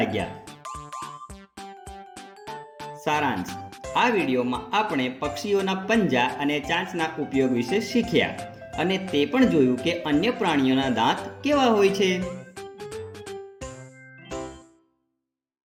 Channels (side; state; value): both; identical; correlation 1.00